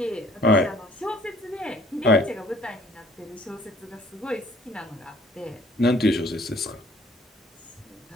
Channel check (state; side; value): normal; both; correlation 0.57